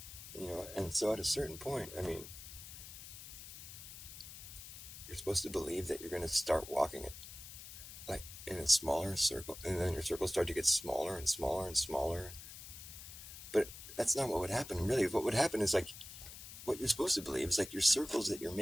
And so at a certain point, I mean, you're supposed to believe that you're going to start walking it, like, in a smaller circle, and then your circles start to get smaller and smaller and smaller. But that's not what would happen, really. What would happen is, like, what you're supposed to believe is, like, your circles that you're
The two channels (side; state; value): left; noise; hiss, 13 dB below the sound